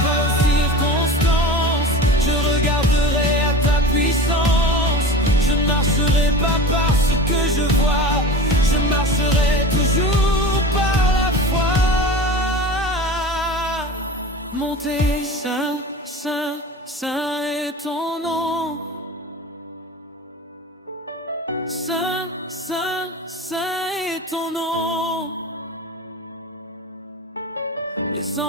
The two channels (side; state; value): both; normal; correlation 0.33